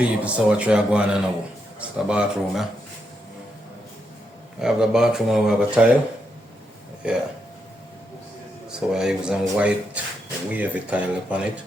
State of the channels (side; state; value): both; normal; correlation 0.82